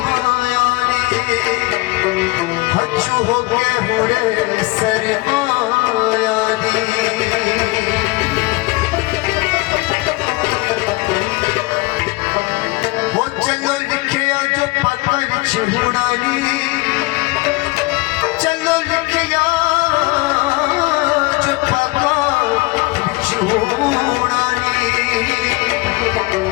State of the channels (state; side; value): quieter; right; 23.4 dB